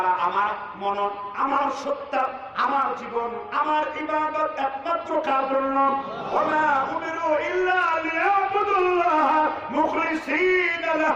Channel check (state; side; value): identical; both; correlation 1.00